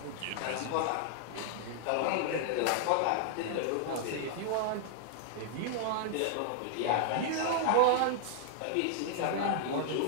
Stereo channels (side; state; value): both; different; correlation -0.01